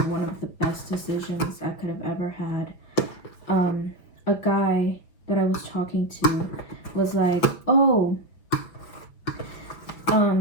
one of the best decisions I could have ever had. A guy that I was talking to was like, oh,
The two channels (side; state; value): right; late; 5.9 ms